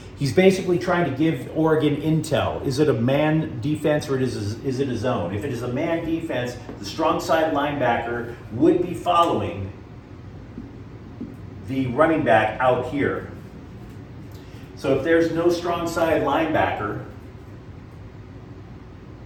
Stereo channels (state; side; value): identical; both; correlation 1.00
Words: He's basically trying to give Oregon intel. Is it a man defense or is it a zone? If it is a man defense, the strong side linebacker would be following the running back out here. So if there's no strong side linebacker,